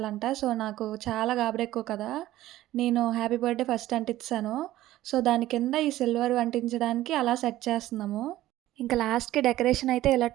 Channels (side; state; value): left; quieter; 15.1 dB